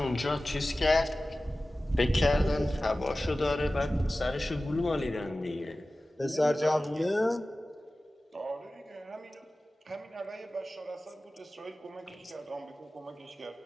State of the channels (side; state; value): both; normal; correlation 0.96